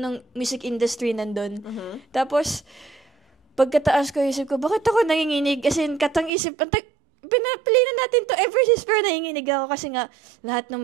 music industry nandun. Tapos, pagkataas ko, isip ko, bakit ako nanginginig? As in, Katang Isip, pinapili na natin to ever since, pero nanginginig ako kasi nga, lahat ng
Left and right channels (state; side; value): drops out; left; at 6.3 s